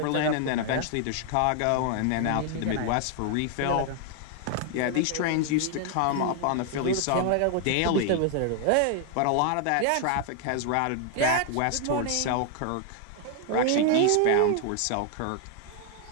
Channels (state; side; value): different; both; correlation 0.00